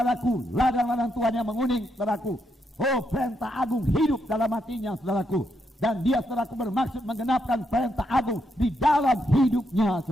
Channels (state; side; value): normal; both; correlation 0.79